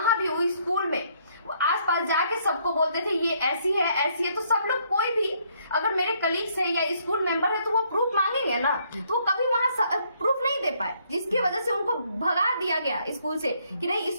भी वही स्कूल में आसपास जाके सबको बोलते थे ये ऐसी है, ऐसी है। तो सब लोग, कोई भी अगर मेरे कलीग्स है या स्कूल मेंबर है तो वो प्रूफ मांगेंगे ना, तो वो कभी वहां प्रूफ नहीं दे पाए, जिसकी वजह से उनको भगा दिया गया स्कूल से कि नहीं,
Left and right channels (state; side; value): inverted; both; correlation -0.68